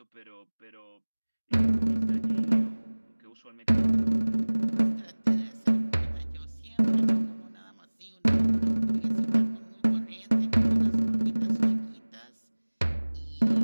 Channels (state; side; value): inverted; both; correlation -1.00